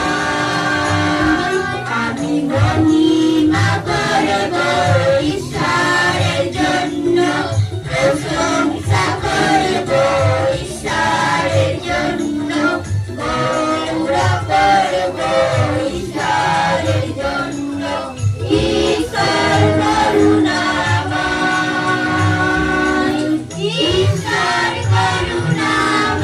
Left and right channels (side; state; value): both; identical; correlation 1.00